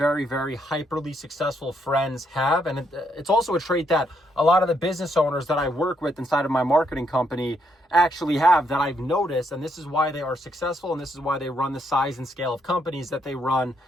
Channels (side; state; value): both; normal; correlation 0.75